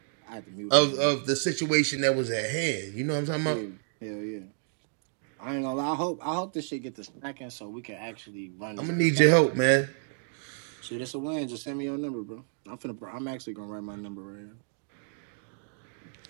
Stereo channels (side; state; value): left; silent; digital silence